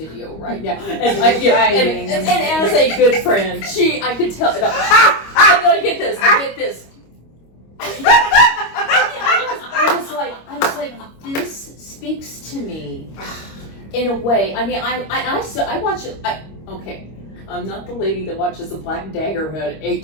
right now. And and as a good friend, I could tell. No, I get this. I was like, this speaks to me in a way. I mean, I watch it. Okay, I'm not the lady that watches the Black Daggerhood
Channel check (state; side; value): late; right; 25 ms